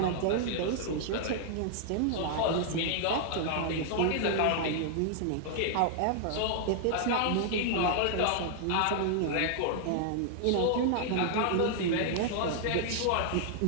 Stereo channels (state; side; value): different; both; correlation -0.01